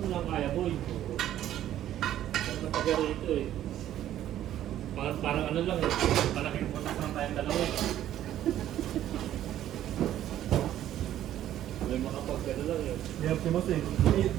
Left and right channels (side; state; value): left; quieter; 12.1 dB